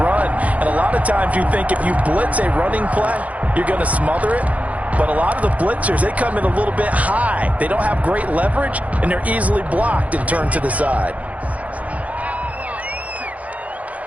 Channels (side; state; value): left; late; 0.068 ms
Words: And a lot of times you think if you blitz a running play, you're going to smother it. But a lot of the blitzers, they come in a little bit high. They don't have great leverage, and they're easily blocked and turned to the side.